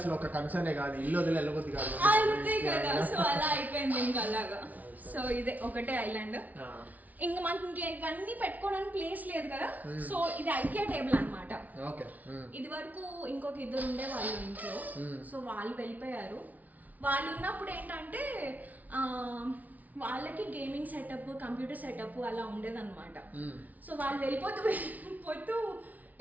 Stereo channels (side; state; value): left; late; 0.075 ms